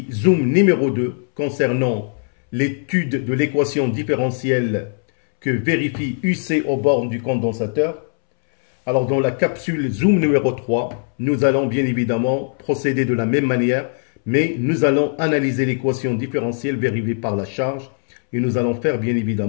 Zoom numéro 2 concernant l'étude de l'équation différentielle que vérifie UC aux bornes du condensateur. Alors dans la capsule Zoom numéro 3, nous allons bien évidemment procéder de la même manière, mais nous allons analyser l'équation différentielle vérifiée par la charge et nous allons faire bien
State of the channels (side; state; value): right; silent; 65 dB below the other